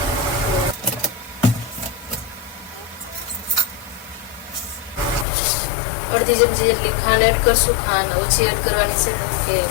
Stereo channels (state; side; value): drops out; right; at 5.2 s